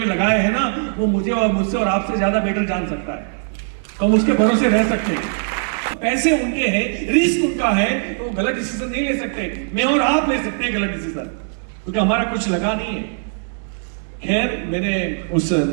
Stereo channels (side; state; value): left; silent; 66 dB below the other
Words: लगाए हैं ना, वो मुझे और मुझसे और आपसे ज्यादा बेटर जान सकता है, तो हम उसके भरोसे रह सकते हैं। पैसे उनके हैं, रिस्क उनका है, तो वो गलत डिसीजन नहीं ले सकते। मैं और आप ले सकते हैं गलत डिसीजन, क्योंकि हमारा कुछ लगा नहीं है। खैर, मैंने उस